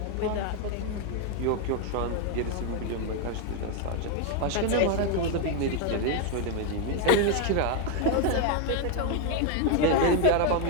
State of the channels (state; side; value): different; both; correlation 0.01